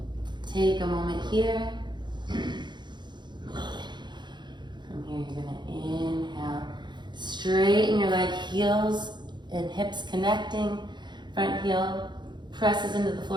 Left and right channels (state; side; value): late; left; 0.22 ms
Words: Take a moment here. From here, you're gonna inhale. Straighten your leg, heels and hips connecting. Front heel presses into the